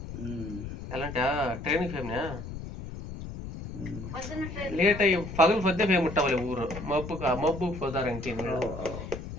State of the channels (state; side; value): noise; left; rumble, 9 dB below the sound